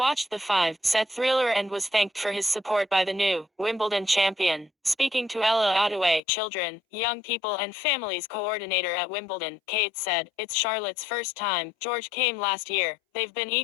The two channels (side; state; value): right; drops out; at 6.2 s